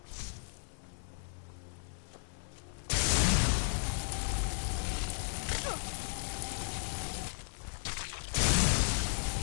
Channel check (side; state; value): right; silent; digital silence